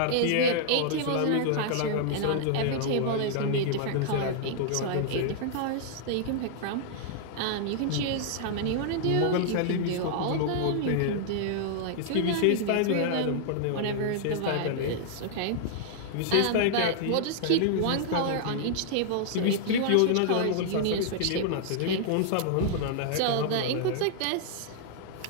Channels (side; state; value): both; different; correlation -0.01